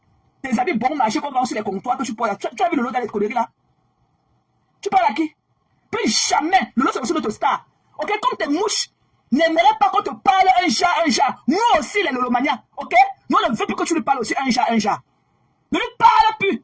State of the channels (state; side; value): identical; both; correlation 1.00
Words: Des habits bon marché qu'on vend sur les comptoirs que tu portes là. Tu as vu le lot dans les conneries là? Tu parles à qui? Plus jamais. Lolo, c'est aussi notre star. Ok, comme tes mouches n'aimeraient pas qu'on te parle un chat. Nous aussi, les Lolomania. Ok? Nous, on ne veut plus que tu lui parles aussi un chat. Ne lui parle plus